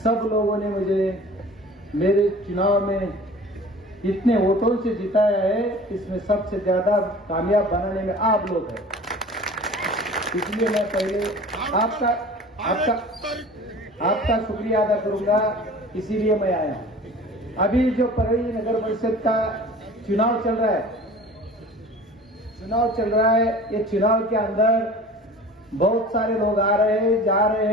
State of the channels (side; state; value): both; normal; correlation 0.43